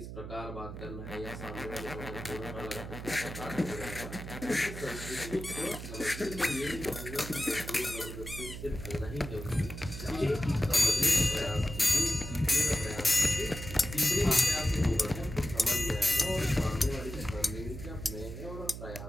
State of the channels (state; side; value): noise; right; hum, 9 dB below the sound